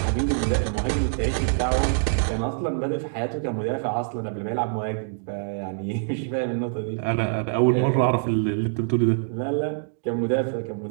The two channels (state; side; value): silent; left; digital silence